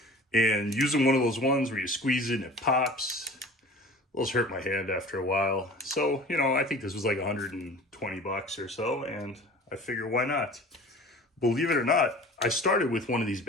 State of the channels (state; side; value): normal; both; correlation 0.43